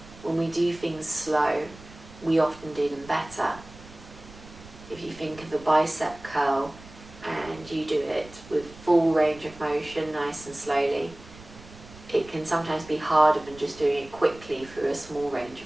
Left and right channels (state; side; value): noise; right; rumble, 19 dB below the sound